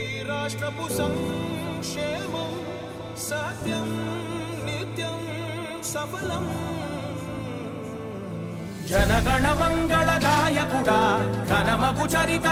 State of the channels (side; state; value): both; identical; correlation 1.00